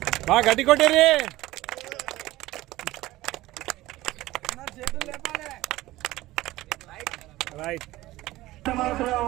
బాగా గట్టి కొట్టేరి రైట్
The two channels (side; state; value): left; quieter; 17.4 dB